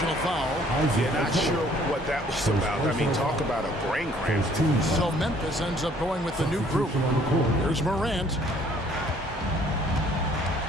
foul. Yeah, not sure what that was about. I mean, talk about a brain cramp. So Memphis ends up going with the new group. Here's Morant.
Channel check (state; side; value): normal; both; correlation 0.59